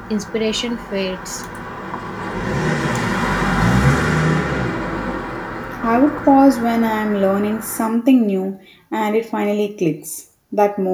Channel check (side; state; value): both; identical; correlation 1.00